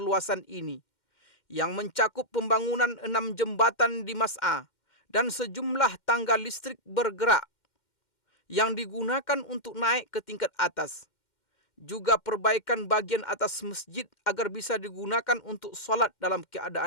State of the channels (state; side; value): late; right; 2.1 ms